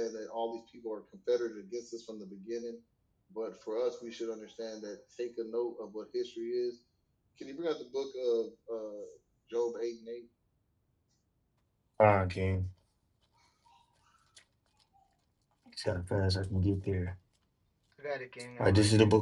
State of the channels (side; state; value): both; identical; correlation 1.00